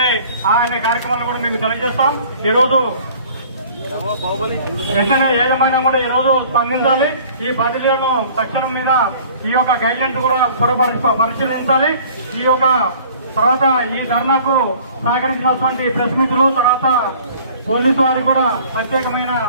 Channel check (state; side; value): inverted; both; correlation -0.50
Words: అనే కార్యక్రమాలను కూడా మీకు తెలియజేస్తాం. ఈ రోజు వెంటనే యాజమాన్యం కూడా ఈ రోజు స్పందించాలి. ఈ బదిలీలను తక్షణం మీద ఈ యొక్క గైడ్లైన్స్ కూడా పరిశీలించాలి. ఈ యొక్క తర్వాత ఈ ధర్నాకు సహకరించినటువంటి ప్రెస్ మిత్రులు, తర్వాత పోలీసు వారికి కూడా ప్రత్యేకమైన